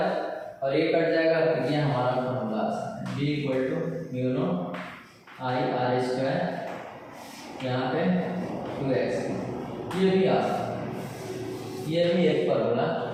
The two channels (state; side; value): identical; both; correlation 1.00